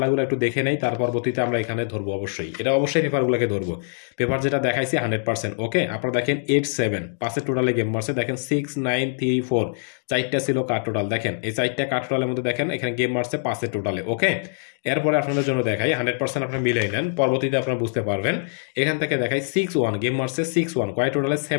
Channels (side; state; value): right; silent; digital silence